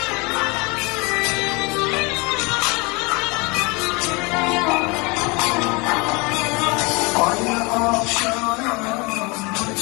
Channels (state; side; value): quieter; right; 27.7 dB